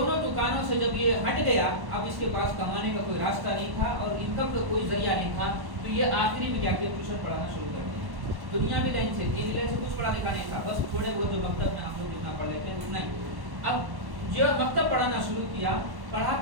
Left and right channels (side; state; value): left; late; 1.1 ms